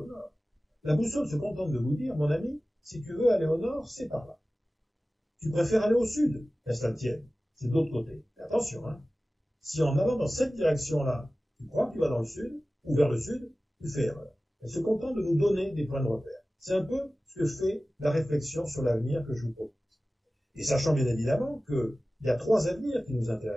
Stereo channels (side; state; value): both; normal; correlation 0.96